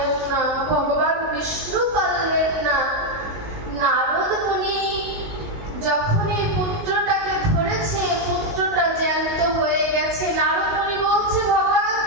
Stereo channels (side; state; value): left; late; 19 ms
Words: না, ভগবান বিষ্ণু পারলেন না। নারদ মুনি যখন এই পুত্রটাকে ধরেছে, পুত্রটা জ্যান্ত হয়ে গেছে। নারদ মুনি বলছে, ভগবান